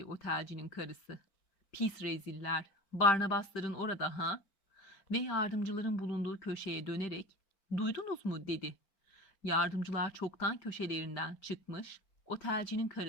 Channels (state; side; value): late; right; 5.2 ms